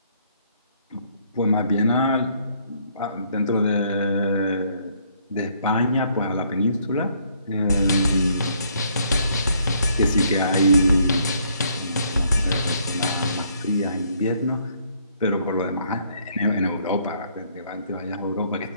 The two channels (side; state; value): both; inverted; correlation -0.68